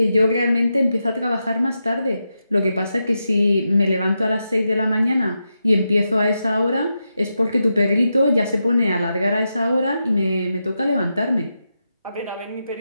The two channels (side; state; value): both; inverted; correlation -0.87